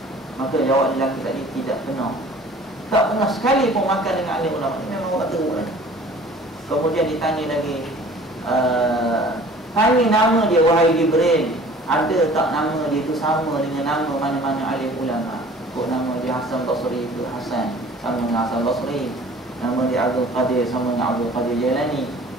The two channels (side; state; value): both; normal; correlation 0.48